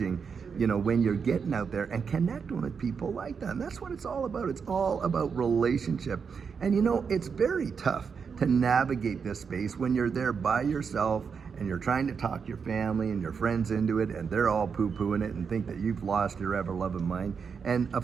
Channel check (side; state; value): left; quieter; 6.1 dB